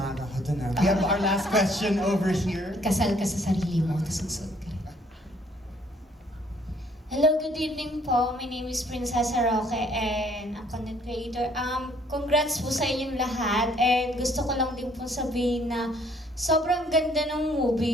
ako dun. We have our last question over here. Kasal ka sa sarili mo, tapos susunod ka. Hello, good evening po. My name is Princessa Roque and a content creator. Congrats po sa inyong lahat and gusto ko lang din po sabihin na sobrang ganda ng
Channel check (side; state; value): both; normal; correlation 0.63